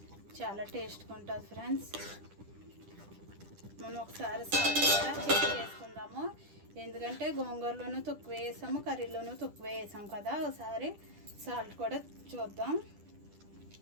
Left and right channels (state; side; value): late; left; 10 ms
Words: చాలా టేస్ట్గా ఉంటుంది ఫ్రెండ్స్. మనం ఒకసారి సాల్ట్ కూడా చెక్ చేసుకుందాము, ఎందుకంటే గోంగూరలోనూ తక్కువ వేసాము, కర్రీలోనూ తక్కువ వేసాం కదా. ఒకసారి సాల్ట్ కూడా చూద్దాం.